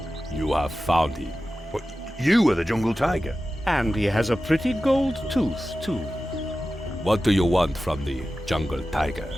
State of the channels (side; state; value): both; normal; correlation 0.94